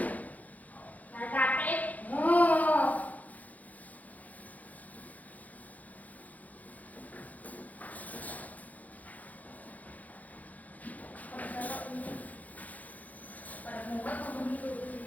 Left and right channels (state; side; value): late; right; 0.077 ms